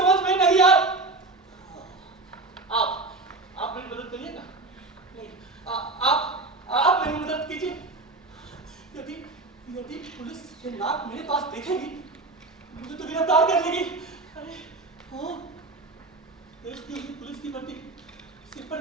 में नहीं आ। आप मेरी मदद करिएगा? नहीं, आप मेरी मदद कीजिए। यदि पुलिस ये नाक मेरे पास देखेगी मुझे तो गिरफ्तार कर लेगी। अरे हाँ, देश की पुलिस की वर्दी, सिर पर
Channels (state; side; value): quieter; left; 3.3 dB